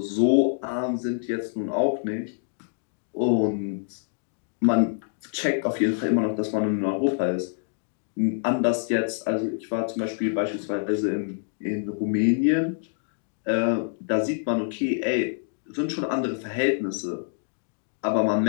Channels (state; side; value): silent; right; digital silence